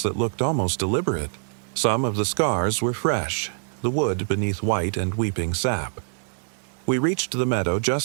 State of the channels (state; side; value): silent; left; digital silence